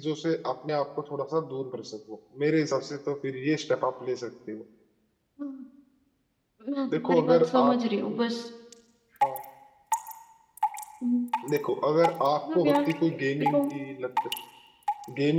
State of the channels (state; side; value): identical; both; correlation 1.00